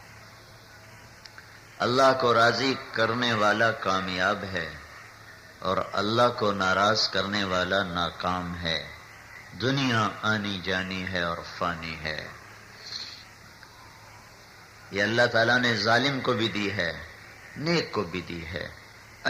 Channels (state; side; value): identical; both; correlation 1.00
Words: اللہ کو راضی کرنے والا کامیاب ہے اور اللہ کو ناراض کرنے والا ناکام ہے۔ دنیا آنی جانی ہے اور فانی ہے۔ یہ اللہ تعالیٰ نے ظالم کو بھی دی ہے، نیک کو بھی دی ہے،